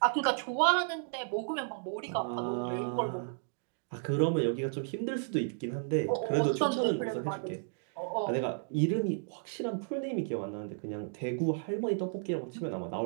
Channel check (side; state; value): left; silent; digital silence